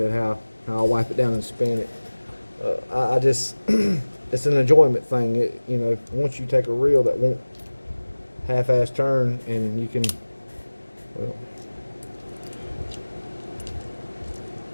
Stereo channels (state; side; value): inverted; both; correlation -1.00